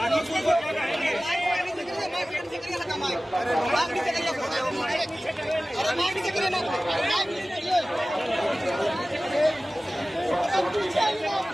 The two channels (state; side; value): normal; both; correlation 0.97